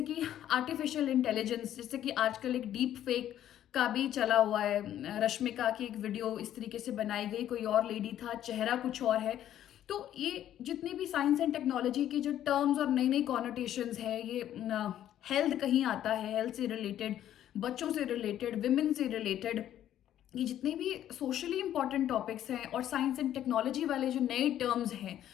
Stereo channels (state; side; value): quieter; right; 11.5 dB